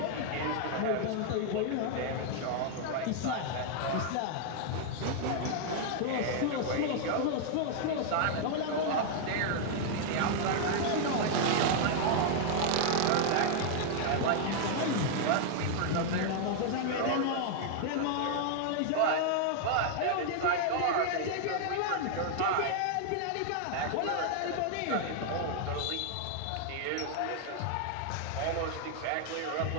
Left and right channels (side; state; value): both; different; correlation 0.00